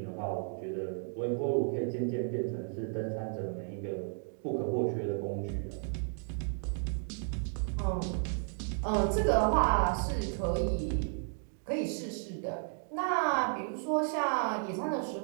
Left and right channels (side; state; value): left; silent; 56 dB below the other